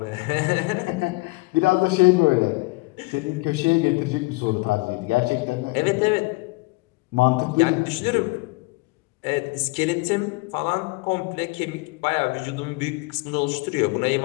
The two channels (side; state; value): right; quieter; 25.0 dB